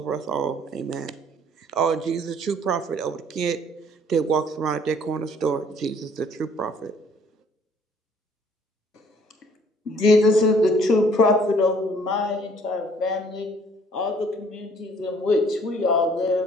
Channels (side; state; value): both; normal; correlation 0.58